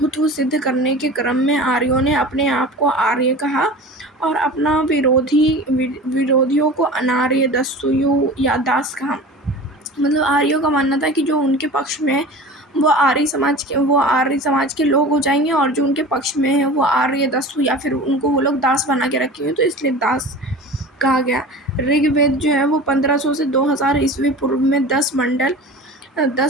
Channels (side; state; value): both; normal; correlation 0.36